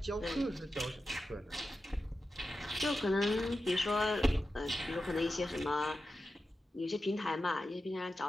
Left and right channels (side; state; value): both; normal; correlation 0.91